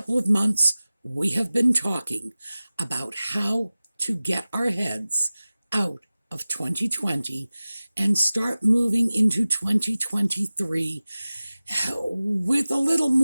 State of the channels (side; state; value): both; inverted; correlation -0.97